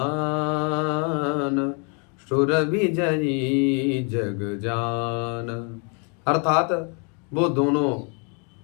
सुर विजयी जग जान। अर्थात वो दोनों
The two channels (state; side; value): quieter; right; 36.6 dB